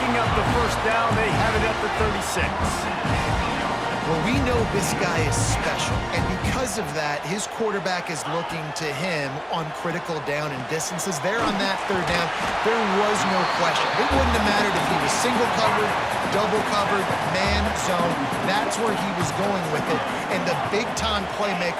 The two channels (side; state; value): both; identical; correlation 1.00